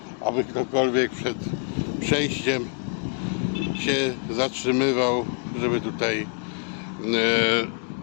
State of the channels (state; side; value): quieter; right; 39.4 dB